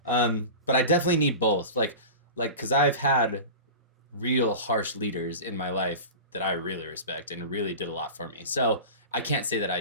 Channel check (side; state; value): both; inverted; correlation -0.32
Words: But I definitely need both. Like, cause I've had real harsh leaders in my life that I really respect and really did a lot for me. So I can't say that I